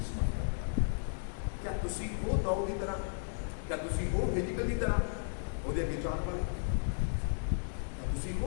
समर्थ रखदा क्या तुसीं हो दाऊद की तरह क्या तुसीं हो हिजकिय्याह की तरह ਉਹਦੇ ਅੱਗੇ ਜਾਣ ਵਾਲੇ ਤੁਸੀਂ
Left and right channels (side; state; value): right; silent; digital silence